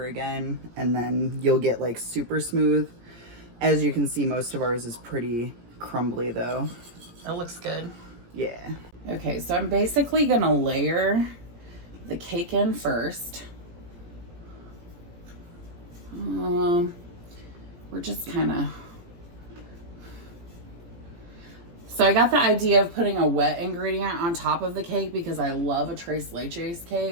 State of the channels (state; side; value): late; left; 17 ms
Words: again, and then you'll get like super smooth. As you can see, most of ours is pretty crumbly though. That looks good. Yeah. Okay, so I'm basically gonna layer the cake in first. We're just kind of... So I got the idea of putting a wet ingredient on top of the cake because I love a tres leches